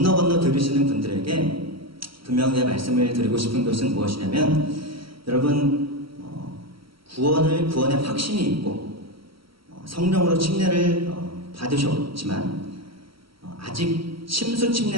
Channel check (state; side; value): late; left; 0.75 ms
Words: 들으시는 분들에게 분명히 말씀을 드리고 싶은 것은 무엇이냐면, 여러분, 구원의 확신이 있고 성령으로 침례를 받으셨지만 아직 침수